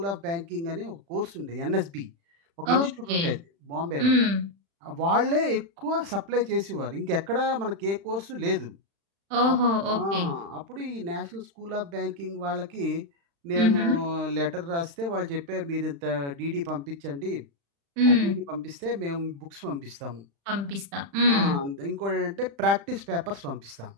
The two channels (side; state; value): left; late; 35 ms